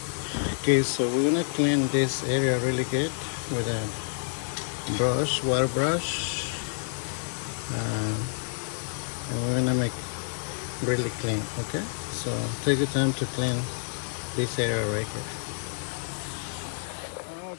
Okay, so we're gonna clean this area really good with a brush, water brush, and we're gonna make really clean. Okay, so take your time to clean this area right here.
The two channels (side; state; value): right; silent; 59 dB below the other